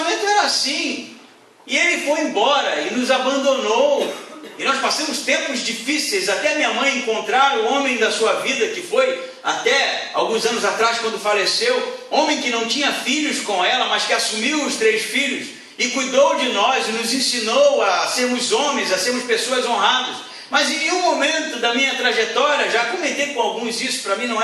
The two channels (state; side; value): identical; both; correlation 1.00